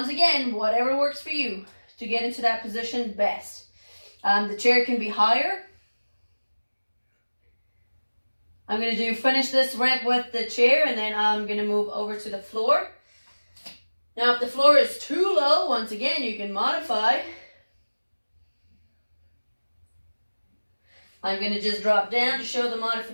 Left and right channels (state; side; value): inverted; both; correlation -1.00